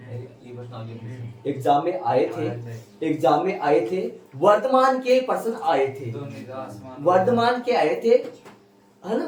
एग्जाम में आए थे वर्तमान के प्रश्न आए थे, वर्तमान के आए थे, है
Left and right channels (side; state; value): both; identical; correlation 1.00